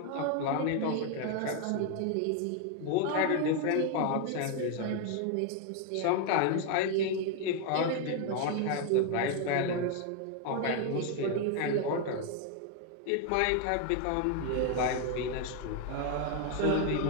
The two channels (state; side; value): different; both; correlation 0.01